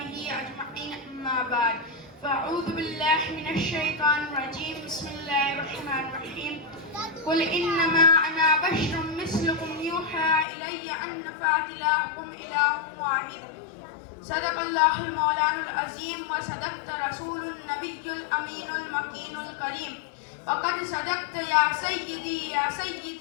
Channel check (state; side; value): drops out; right; at 10.5 s